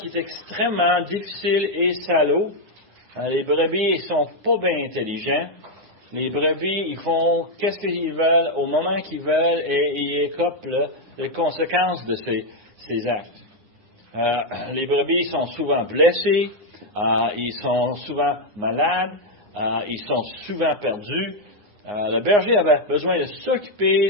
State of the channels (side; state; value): left; late; 9.7 ms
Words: est extrêmement difficile et salaud. Les brebis, ils sont pas bien intelligents. Les brebis, ils font qu'est-ce qu'ils veulent au moment qu'ils veulent et ils écopent les conséquences de ces actes. Les brebis sont souvent blessés, ils sont souvent malades, ils sont souvent perdus. Le berger avait besoin de